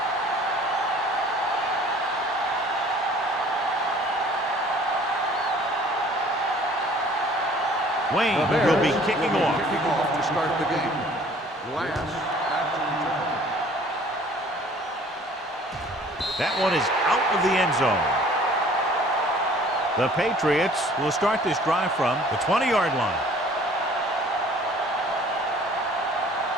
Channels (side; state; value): both; normal; correlation 0.52